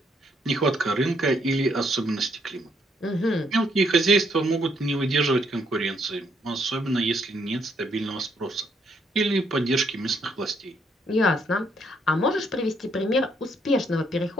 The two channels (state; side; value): normal; both; correlation 0.72